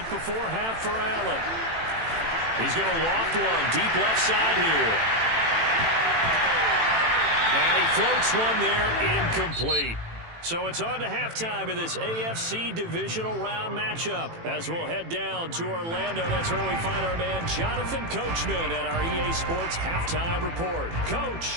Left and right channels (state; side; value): late; left; 18 ms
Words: before half for Allen. He's going to loft one deep left side here. And he floats one there, incomplete. So it's on to halftime in this AFC divisional round matchup. As we'll head down to Orlando, that's where we find our man Jonathan Coachman at our EA Sports Halftime Report.